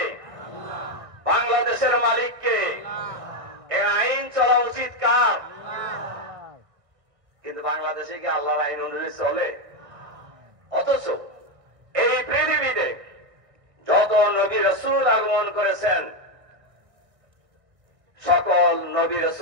বাংলাদেশের মালিক কে? এই আইন চলা উচিত কার? কিন্তু বাংলাদেশে কি আল্লাহর আইন অনুযায়ী চলে? অথচ এই পৃথিবীতে যত নবী রাসূল আগমন করেছেন, সকল নবী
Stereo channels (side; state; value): left; late; 1.6 ms